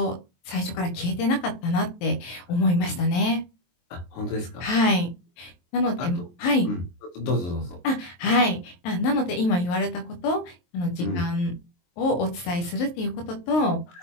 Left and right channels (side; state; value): right; late; 23 ms